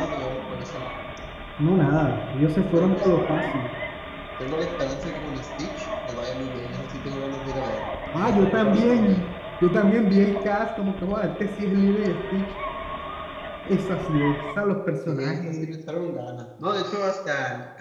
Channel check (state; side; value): identical; both; correlation 1.00